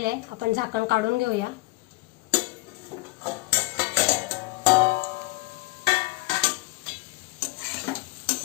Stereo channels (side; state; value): right; quieter; 23.1 dB